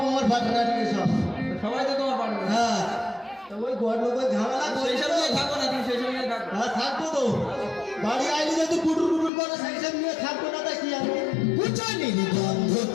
Partner সব সবাই তো তোমার পার্টনার। হ্যাঁ তো ওই ঘর লোকের ঝামেলা সেই সব নিয়ে থাকো না, তুমি সেই সব নিয়ে থাকো। হ্যাঁ থাকবো তো বাড়ি আইলে যদি কুটুর কুটুর করে সেই সব নিয়ে থাকবো না তা কি আমি বুঝানি গন্ধ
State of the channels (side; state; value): right; drops out; at 9.3 s